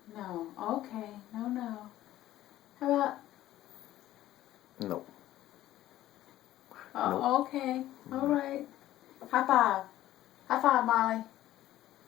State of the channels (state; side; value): quieter; right; 14.2 dB